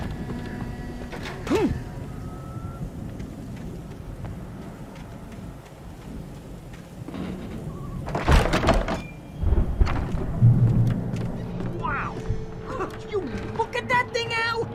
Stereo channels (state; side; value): identical; both; correlation 1.00